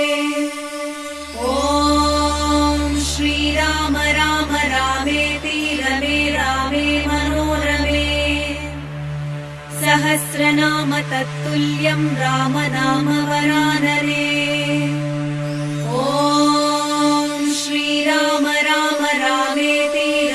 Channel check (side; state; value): both; identical; correlation 1.00